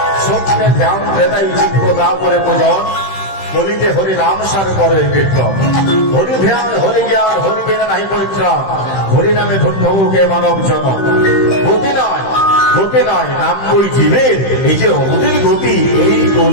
সত্যে ধ্যান দেদাই চিত্ত তাপরে পূজন, বলিতে হরি নাম সার করে কীর্তন। হরি ধ্যান, হরি জ্ঞান, হরি বিনা নাহি পরিত্রাণ, হরি নামে ধন্য হোকে মানব জন। গতি নয়, গতি নয়, নাম বই জীবের, এই যে অগতির গতি এই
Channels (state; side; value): late; right; 15 ms